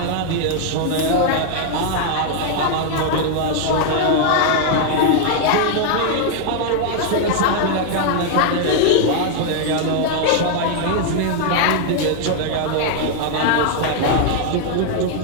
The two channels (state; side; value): different; both; correlation 0.00